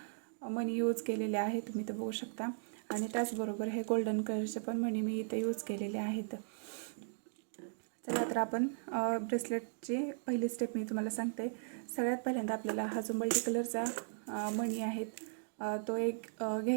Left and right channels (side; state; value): left; silent; digital silence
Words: मणी यूज केलेले आहे, तुम्ही इथं बघू शकता। आणि त्याचबरोबर हे गोल्डन कलरचे पण मणी मी इथं यूज केलेले आहेत। चला तर आपण ब्रेसलेटची पहिली स्टेप मी तुम्हाला सांगते। सगळ्यात पहिल्यांदा आपल्याला हा जो मल्टी कलरचा मणी आहेत तो एक